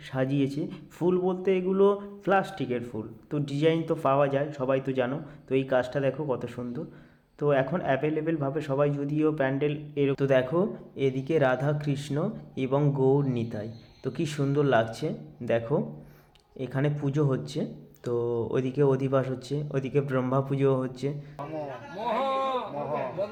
সাজিয়েছে। ফুল বলতে এগুলো প্লাস্টিকের ফুল, তো ডিজাইন তো পাওয়া যায়, সবাই তো জানো। তো এই কাজটা দেখো কত সুন্দর। তো এখন অ্যাভেলেবেলভাবে সবাই যদিও প্যান্ডেল তো দেখো এদিকে রাধা কৃষ্ণ এবং গৌর নিতাই, তো কি সুন্দর লাগছে। দেখো এখানে পুজো হচ্ছে, তো ওইদিকে অধিবাস হচ্ছে, ওইদিকে ব্রহ্মা পুজো হচ্ছে।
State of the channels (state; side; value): identical; both; correlation 1.00